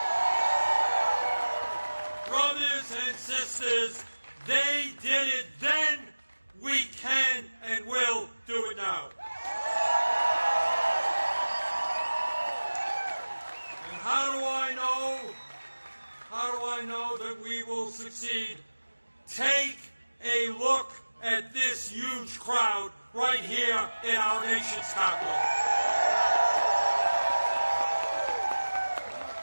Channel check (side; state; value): both; inverted; correlation -1.00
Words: Brothers and sisters, they did it then, we can and will do it now. And how do I know that we will succeed? Take a look at this huge crowd right here in our nation's capital.